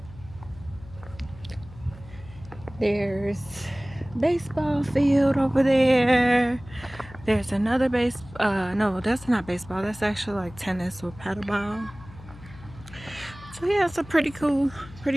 There's baseball field over there. There's another no, that's not baseball. That's actually like tennis or paddleball. So yeah, it's a pretty cool,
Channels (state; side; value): noise; left; hum, 18 dB below the sound